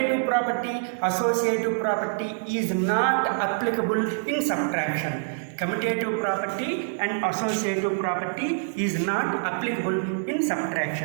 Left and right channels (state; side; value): silent; left; digital silence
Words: property, associative property is not applicable in subtraction. Commutative property and associative property is not applicable in